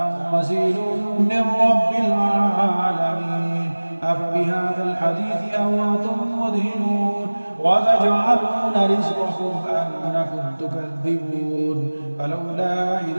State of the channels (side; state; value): both; inverted; correlation -1.00